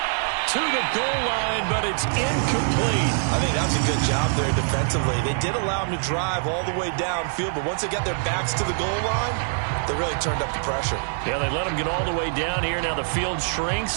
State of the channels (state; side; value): silent; left; digital silence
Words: To the goal line, but it's incomplete. I think that's a good job there defensively. They did allow him to drive all the way downfield, but once they got their backs to the goal line, they really turned up the pressure. Yeah, they let him get all the way down here. Now the field